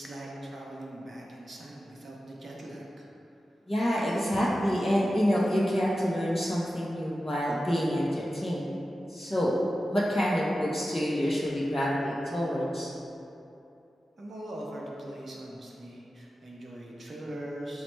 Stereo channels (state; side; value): normal; both; correlation 0.93